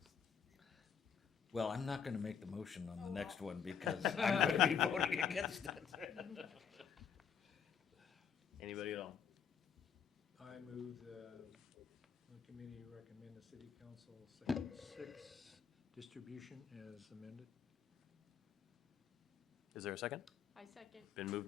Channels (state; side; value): quieter; right; 7.4 dB